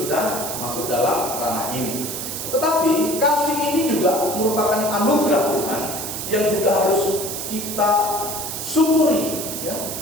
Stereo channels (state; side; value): noise; right; hiss, 5 dB below the sound